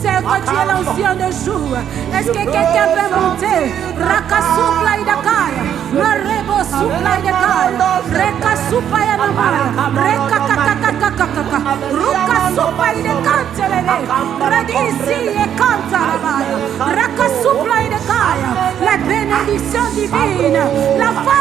que tu es l'ancien de jour. Est-ce que quelqu'un peut monter? Rakasupla idakaya, marebo supla idakaya, rekasupa yanamaya, rekakakakakakaka, rukasupa idakantelele, radisi ekantarabaya, rakasupla idakaya. La bénédiction divine, la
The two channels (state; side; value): quieter; left; 9.5 dB